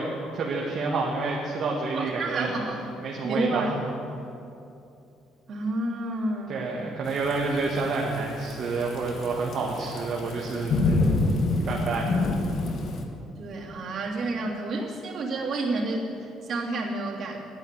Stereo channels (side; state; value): both; normal; correlation 0.69